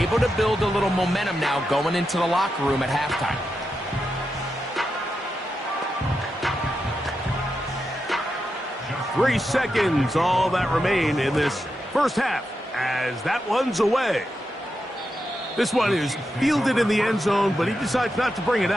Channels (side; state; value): both; normal; correlation 0.87